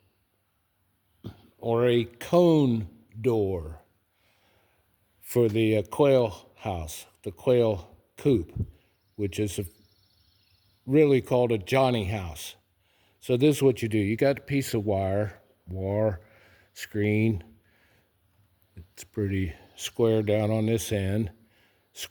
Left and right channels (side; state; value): both; identical; correlation 1.00